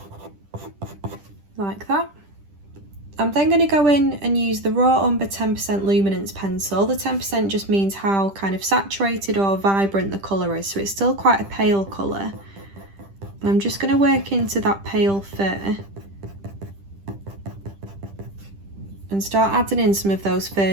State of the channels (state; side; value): late; left; 10 ms